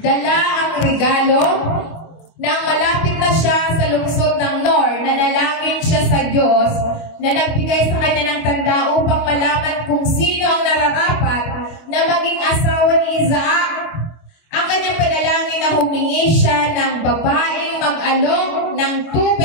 Dala ang regalo nang malapit na siya sa lungsod ng Nor, nanalangin siya sa Diyos na nagbigay sa kanya ng tanda upang malaman kung sino ang nararapat na maging asawa ni Isaac. Ang kanyang panalangin na humingi siya ng babaeng mag-alok ng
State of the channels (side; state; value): right; late; 25 ms